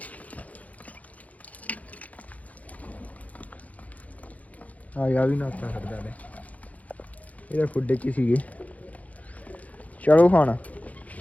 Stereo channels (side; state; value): right; late; 0.071 ms